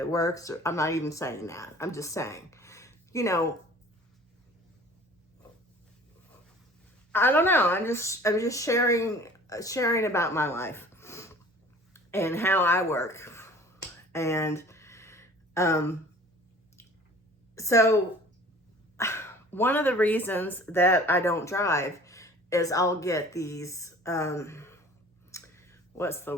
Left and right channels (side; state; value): both; normal; correlation 0.47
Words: works. I'm not even saying that. I'm just saying, I don't know. I'm just sharing about my life and how I work. And so one of the reasons that I don't drive is I'll get these, what's